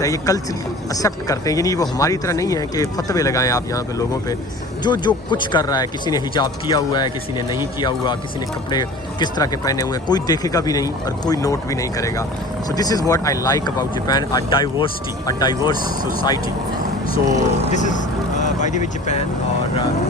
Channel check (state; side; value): normal; both; correlation 0.42